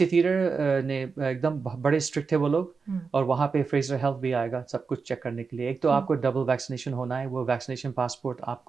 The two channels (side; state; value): left; quieter; 5.0 dB